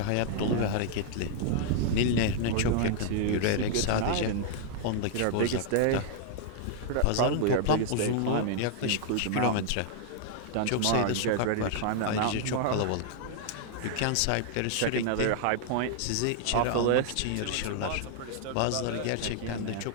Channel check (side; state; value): both; different; correlation -0.01